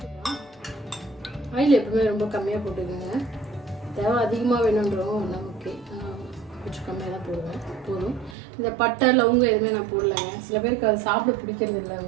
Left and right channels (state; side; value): drops out; left; at 8.3 s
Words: ஆயில் எப்பவுமே ரொம்ப கம்மியாக போட்டுக்கோங்க. தேவை அதிகமாக வேணுன்றோம் நமக்கு கொஞ்சம் கம்மியாக தான் போடுவேன், போதும். இந்த பட்டை லவங்கம் எதுவுமே நான் போடலைங்க. சில பேருக்கு அது சாப்பிட பிடிக்கிறது இல்லை,